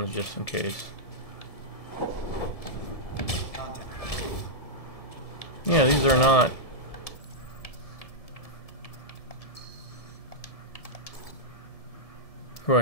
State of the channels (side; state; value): right; late; 1.7 ms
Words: just in case. Contact. Yeah, these are not. Who